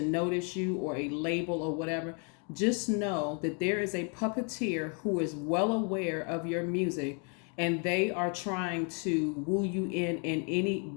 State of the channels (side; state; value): right; quieter; 38.6 dB